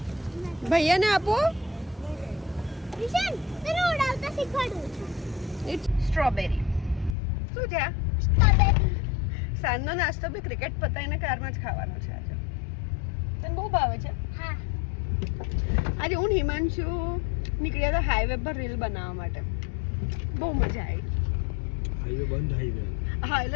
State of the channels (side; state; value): right; drops out; at 7.2 s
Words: ભૈયાને આપો. સ્ટ્રોબેરી શું છે? સાંજનો નાસ્તો બી ક્રિકેટ પતાવીને કારમાં જ ખાવાનો છે આજે. તને બહુ ભાવે છે? આજે હું હિમાંશુ નીકળ્યા હતા હાઈવે પર રીલ બનાવવા માટે. બહુ મજા આવી. હાઈવે બંધ હાઈવે. હા